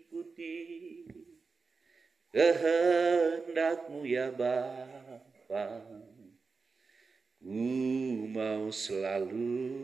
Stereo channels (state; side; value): quieter; left; 4.6 dB